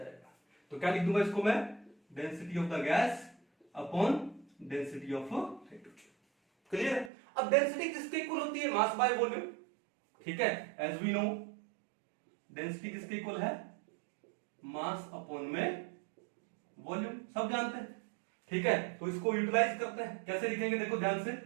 तो क्या लिख दूंगा इसको मैं, density of the gas upon density of hydrogen. Clear है। अब डेंसिटी किसके इक्वल होती है, मास बाय वॉल्यूम, ठीक है। एज वी नो डेंसिटी किसके इक्वल है, मास अपॉन में वॉल्यूम, सब जानते हैं, ठीक है। तो इसको यूटिलाइज करते हैं, कैसे लिखेंगे, देखो ध्यान से,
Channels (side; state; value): left; drops out; at 7.1 s